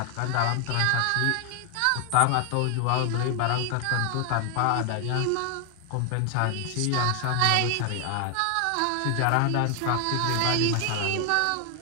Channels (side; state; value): both; different; correlation 0.00